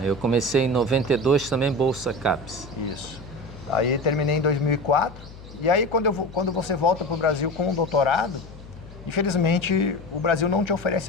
Eu comecei em 92 também, Bolsa CAPES. Isso. Aí terminei em 2004. E aí quando você volta para o Brasil com um doutorado, infelizmente o Brasil não te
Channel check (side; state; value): left; noise; hum, 17 dB below the sound